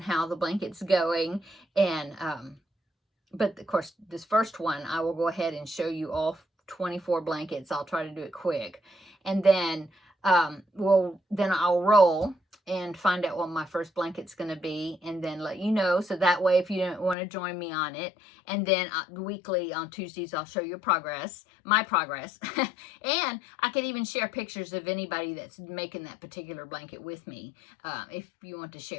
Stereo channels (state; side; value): drops out; right; at 17.2 s